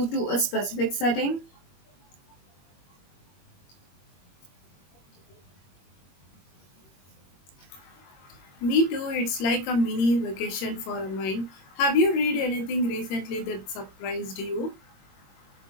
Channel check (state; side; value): late; right; 21 ms